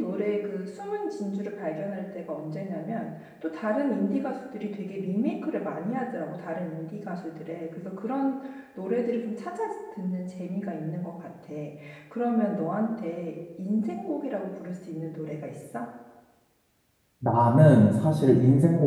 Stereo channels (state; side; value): identical; both; correlation 1.00